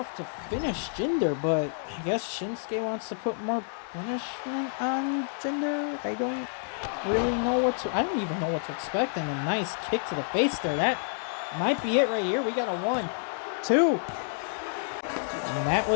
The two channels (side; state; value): right; silent; digital silence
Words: to finish Jinder, but I guess Shinsuke wants to put more punishment on Jinder. I don't really know I don't even know what to expect, and a nice kick to the face there. That might be it right here. We got a 1, 2. And that